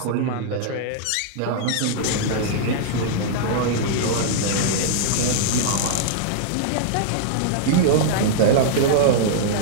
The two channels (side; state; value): both; different; correlation -0.01